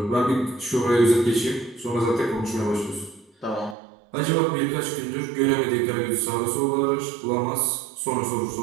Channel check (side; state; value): left; drops out; at 3.8 s